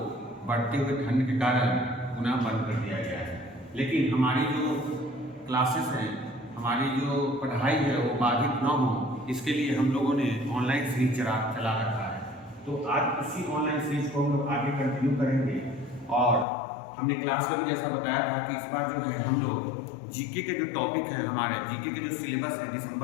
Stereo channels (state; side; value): drops out; right; at 16.4 s